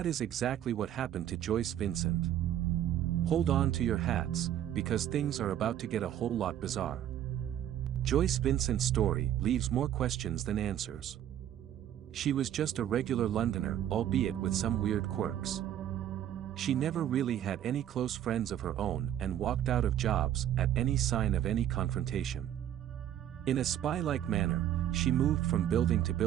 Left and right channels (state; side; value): quieter; left; 11.2 dB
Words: is exactly what happened to Joyce Vincent. Hold on to your hats, because things are about to get a whole lot bizarre. Joyce Vincent's story leaves more questions than answers. She was just a regular Londoner, albeit with some weird quirks. She never really had any close friends of her own and walked out of jobs at any sign of any confrontation. In a spy-like manner, she moved from building to